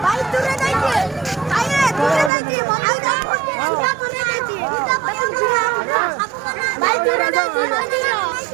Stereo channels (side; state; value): left; drops out; at 2.3 s